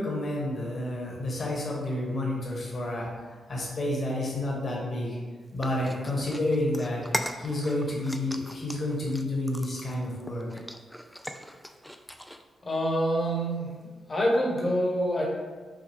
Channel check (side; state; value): both; normal; correlation 0.78